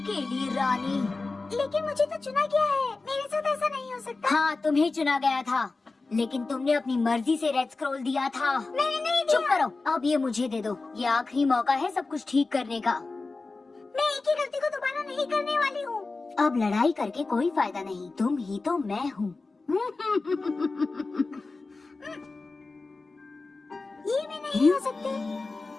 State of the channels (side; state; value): right; quieter; 3.7 dB